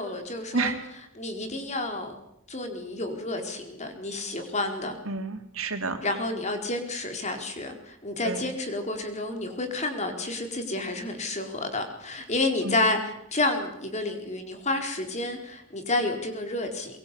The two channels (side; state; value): both; normal; correlation -0.01